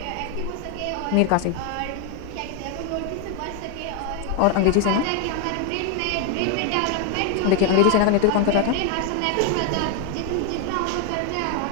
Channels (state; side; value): different; both; correlation 0.01